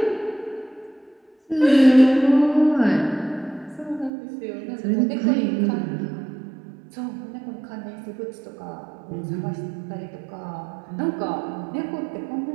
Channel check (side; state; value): left; drops out; at 4.1 s